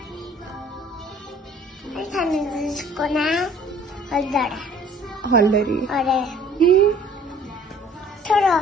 تمیزش کنم. حال داره. حال داری؟ آره. تو را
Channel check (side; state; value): both; normal; correlation 0.53